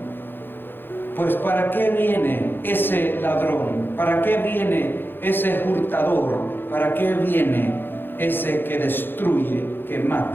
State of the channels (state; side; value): late; right; 0.099 ms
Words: pues ¿para qué viene ese ladrón? ¿Para qué viene ese hurtador? ¿Para qué viene ese que destruye, que